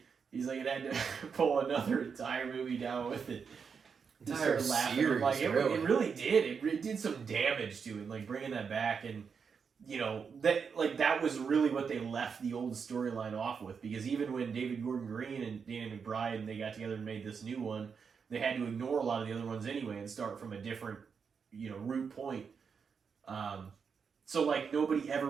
He's like, it had to pull another entire movie down with it. Entire series, like it really did. It did some damage to it, like bringing that back, and you know that was really what they left the old storyline off with. Because even when David Gordon Green and Danny McBride and they got together and made this new one, they had to ignore a lot of the other ones anyway and start from a different, you know, root point. So, like, nobody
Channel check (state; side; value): quieter; left; 6.1 dB